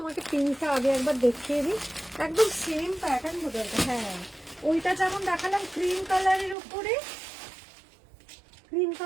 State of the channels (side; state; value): left; drops out; at 6.6 s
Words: পিঙ্কটা আগে একবার দেখিয়ে দিই, একদম সেম প্যাটার্ন বোঝা। হ্যাঁ, ওইটা যেমন দেখালাম ক্রিম কালারের